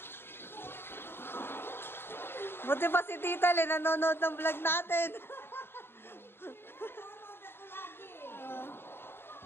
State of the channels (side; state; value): right; late; 0.11 ms